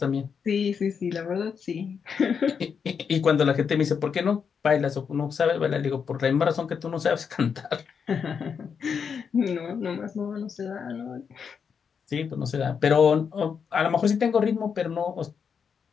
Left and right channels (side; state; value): right; quieter; 6.5 dB